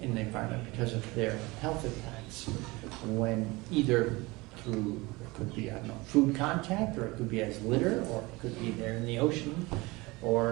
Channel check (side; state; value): left; quieter; 23.1 dB